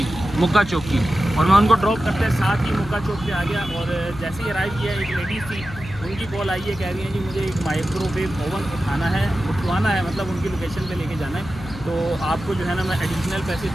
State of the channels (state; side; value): noise; left; hum, 14 dB below the sound